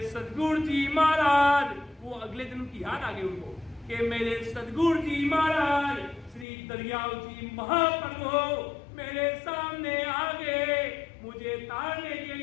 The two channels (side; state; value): right; drops out; at 6.5 s